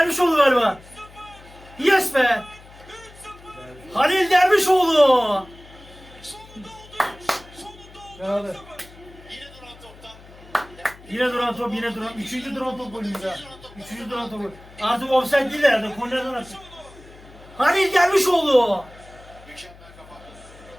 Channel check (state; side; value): noise; left; hum, 21 dB below the sound